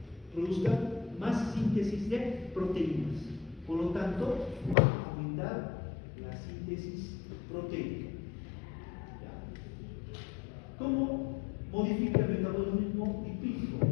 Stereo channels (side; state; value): right; drops out; at 4.8 s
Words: produzcan más síntesis de proteínas. Por lo tanto, va a aumentar la síntesis proteica. ¿Cómo modifica el metabolismo lipídico?